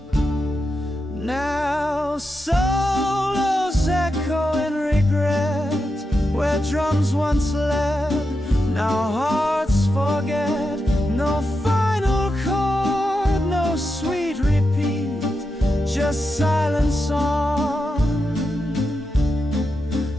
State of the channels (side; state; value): both; normal; correlation 0.87